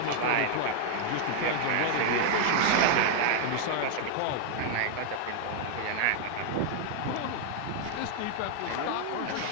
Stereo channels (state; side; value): different; both; correlation 0.00